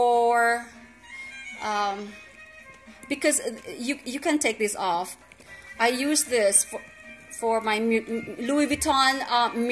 because you can take this off. I used this for my Louis Vuitton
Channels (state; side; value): identical; both; correlation 1.00